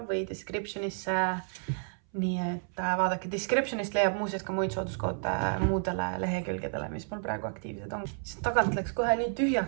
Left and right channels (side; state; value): left; silent; 57 dB below the other